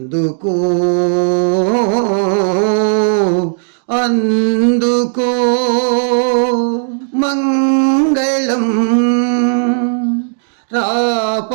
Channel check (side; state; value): left; silent; digital silence